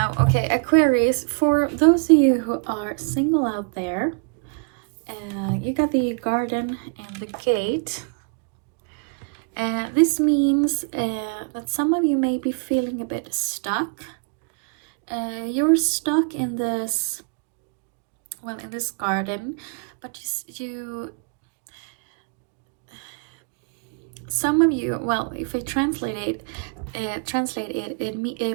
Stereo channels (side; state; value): left; quieter; 38.8 dB